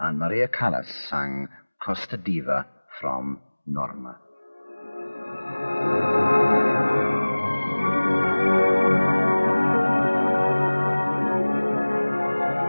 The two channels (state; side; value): inverted; both; correlation -1.00